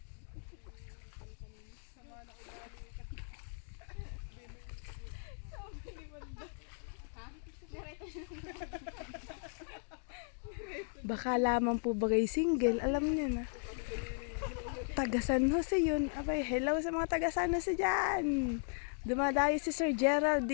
Baka lamang po bagay single, alam niyo na. Taga San Jose yun. Abay, hello sa mga taga San Jose dyan. Dumadayo si Sir Gerald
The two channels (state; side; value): silent; right; 53 dB below the other